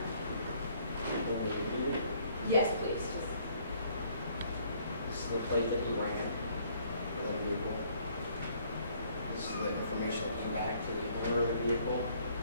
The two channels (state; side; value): inverted; both; correlation -0.63